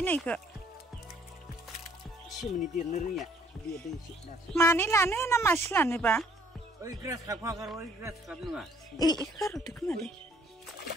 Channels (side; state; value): both; normal; correlation 0.62